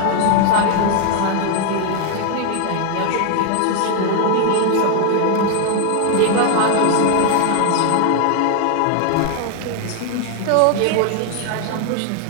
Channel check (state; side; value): different; both; correlation 0.00